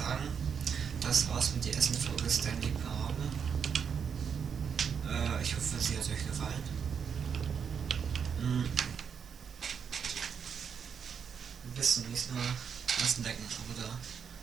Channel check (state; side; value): quieter; left; 7.0 dB